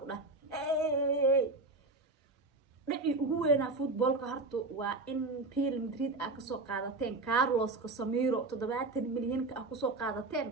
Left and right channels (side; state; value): left; quieter; 3.3 dB